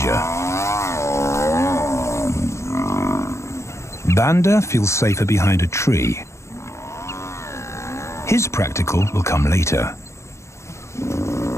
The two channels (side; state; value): right; late; 0.14 ms